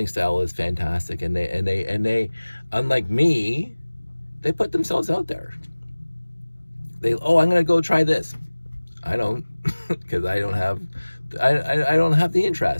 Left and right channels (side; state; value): both; inverted; correlation -1.00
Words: style is fantastic, and they unlike me, they put themselves out there. I'm gonna go try this. I don't, because I don't have the